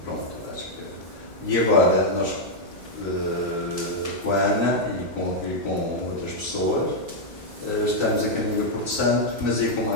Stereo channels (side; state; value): left; noise; hum, 27 dB below the sound